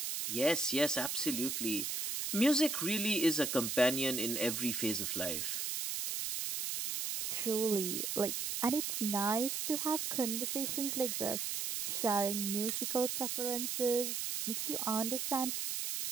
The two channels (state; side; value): noise; right; hiss, 2 dB below the sound